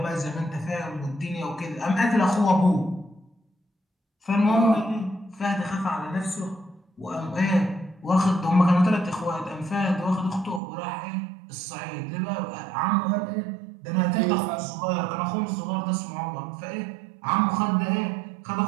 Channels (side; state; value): left; drops out; at 10.6 s